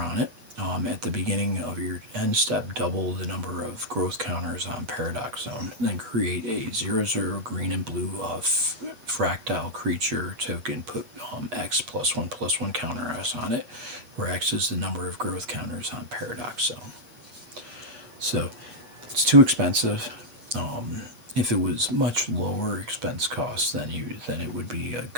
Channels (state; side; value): late; left; 8.2 ms